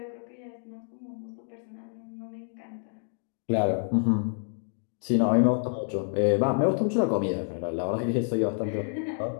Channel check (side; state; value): right; silent; digital silence